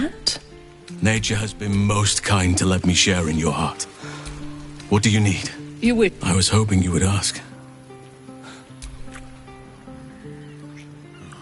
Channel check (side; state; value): both; identical; correlation 1.00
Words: Nature has been most kind to let me share in your heart. What do you need? You would. I was hoping you would ask.